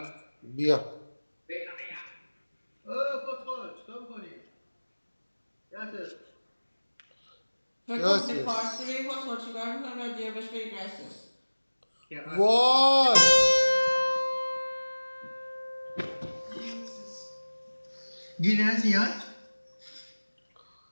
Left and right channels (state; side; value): inverted; both; correlation -1.00